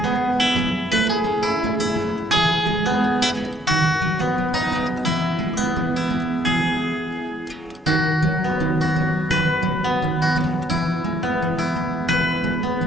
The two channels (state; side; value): normal; both; correlation 0.67